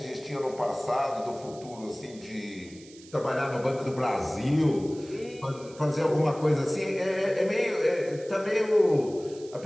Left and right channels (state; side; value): noise; right; hiss, 21 dB below the sound